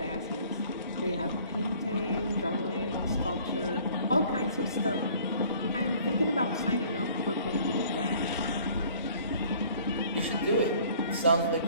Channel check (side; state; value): both; inverted; correlation -0.54